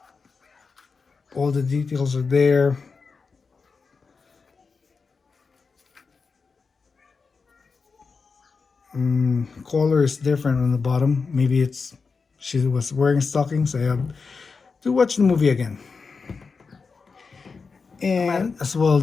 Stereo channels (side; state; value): right; quieter; 4.8 dB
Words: All the details are there. Collar is different on the bottom. Maybe it's she was wearing stockings. I have to watch the movie again. And as well